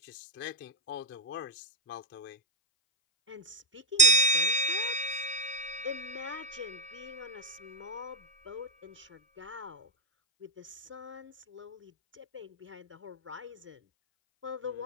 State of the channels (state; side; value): normal; both; correlation 0.01